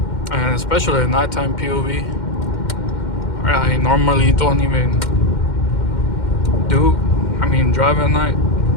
And especially a nighttime POV. I normally don't even drive at night.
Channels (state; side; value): late; right; 2.1 ms